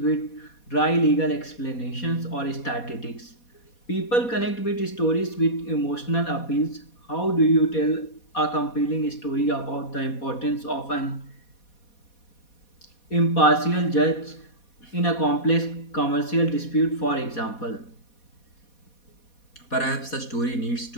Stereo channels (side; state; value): right; late; 4.2 ms